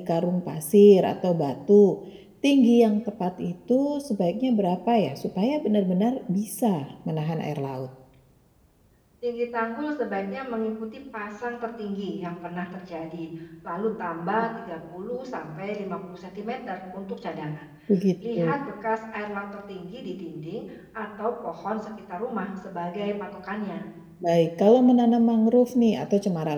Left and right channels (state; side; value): identical; both; correlation 1.00